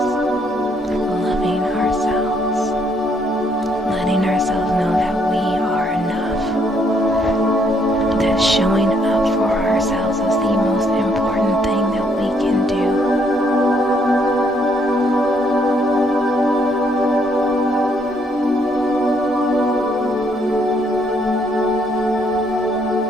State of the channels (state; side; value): normal; both; correlation 0.70